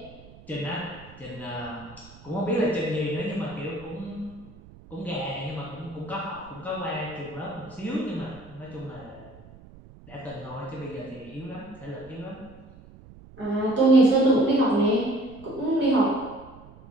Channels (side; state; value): right; noise; rumble, 21 dB below the sound